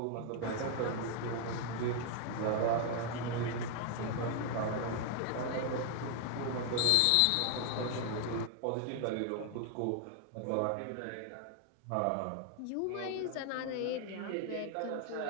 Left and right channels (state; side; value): different; both; correlation 0.00